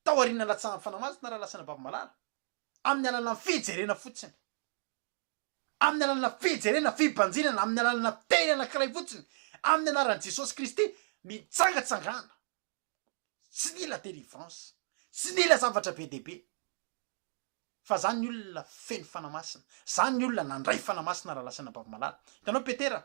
tao aoriana latsahan'ny fanamasina raha lasana bavimalala amin'ny alalana fijerena fotsiny amin'ny alalana fijerena fibanjinana amin'ny alalana teny anankiray fotsiny amin'ny anaran'i Jesosy Kristy mitsangatsangana tsy nila délivrance tsy nila zavatra be dehibe fa zany ny olona feno fanamasina zany ny olona nandray fanamasina raha lasana bavimalala hitanao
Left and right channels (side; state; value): left; silent; digital silence